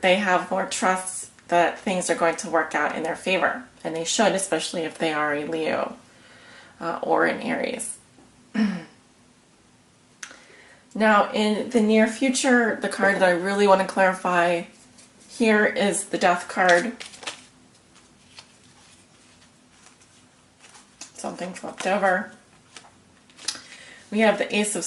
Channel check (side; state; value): both; identical; correlation 1.00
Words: They have more trust that things are going to work out in their favor. And they should, especially if they are a Leo or an Aries. Now, in the near future, the card that I really want to clarify here is the Death card. Something flipped over. We have the Ace of